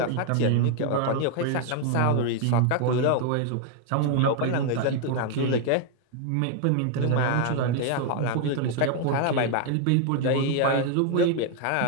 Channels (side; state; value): both; different; correlation 0.00